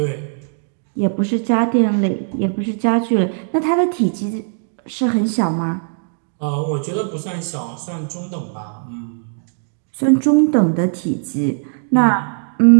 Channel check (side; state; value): left; silent; 60 dB below the other